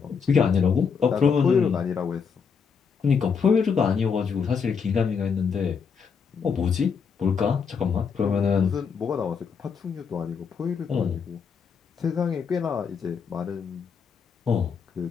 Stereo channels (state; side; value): quieter; right; 6.2 dB